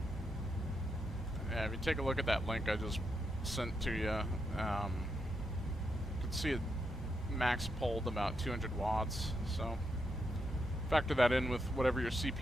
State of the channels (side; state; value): both; normal; correlation 0.82